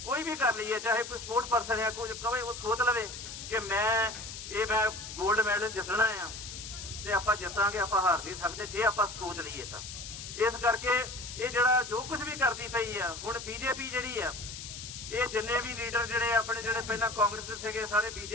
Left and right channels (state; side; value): noise; left; hiss, 10 dB below the sound